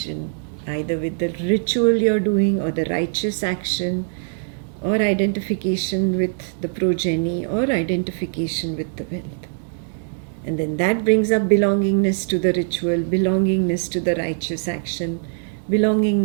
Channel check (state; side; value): silent; left; digital silence